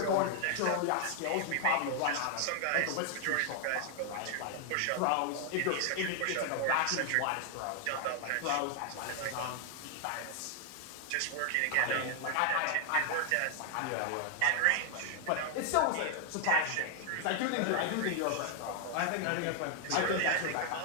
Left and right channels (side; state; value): both; different; correlation 0.00